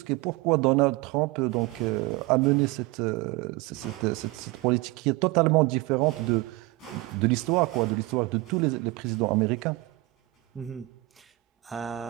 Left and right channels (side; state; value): left; quieter; 21.4 dB